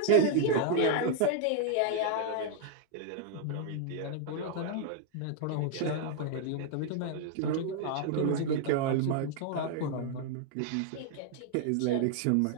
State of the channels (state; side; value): different; both; correlation 0.00